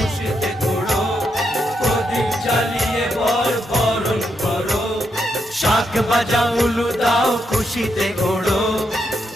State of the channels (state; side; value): normal; both; correlation 0.81